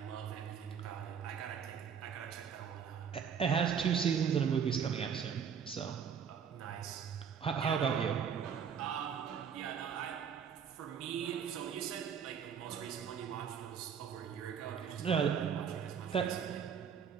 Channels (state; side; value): quieter; left; 7.2 dB